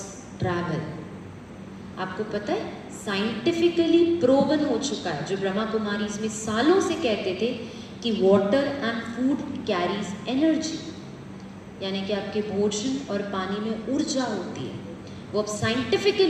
travel. आपको पता है साइंटिफिकली प्रूवन हो चुका है, जो ब्रह्मा कुमारीज में सालों से कहते थे कि water and food carries energy, यानी कि आपके भोजन और पानी में ऊर्जा होती है। वो अब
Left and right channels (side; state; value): both; identical; correlation 1.00